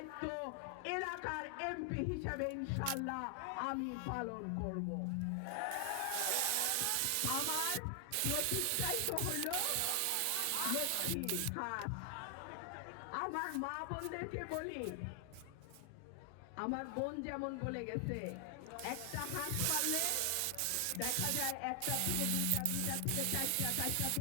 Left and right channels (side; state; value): both; different; correlation 0.00